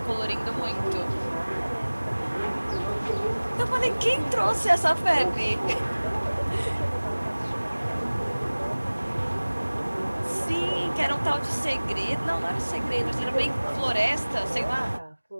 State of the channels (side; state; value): both; inverted; correlation -1.00